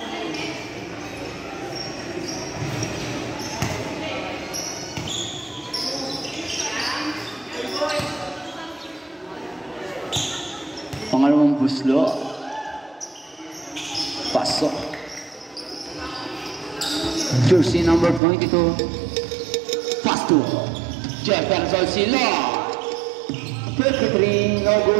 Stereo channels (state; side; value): drops out; left; at 18.2 s